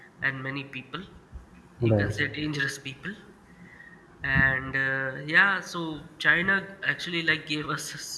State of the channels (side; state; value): both; identical; correlation 1.00